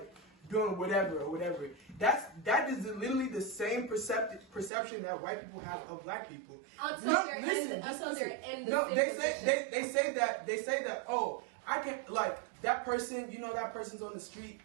Doing whatever. That is literally the same perception that white people have of Black people. Until they're in the No, they say that. Oh, I can that person. That person's on the street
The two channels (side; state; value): left; drops out; at 4.7 s